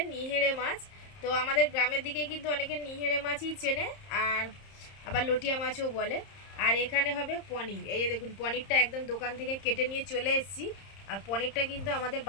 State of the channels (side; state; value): right; late; 30 ms